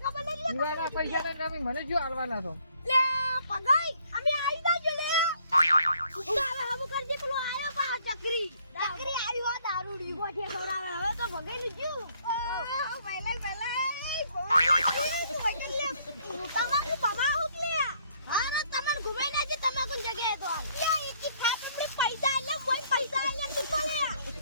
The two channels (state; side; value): inverted; both; correlation -0.65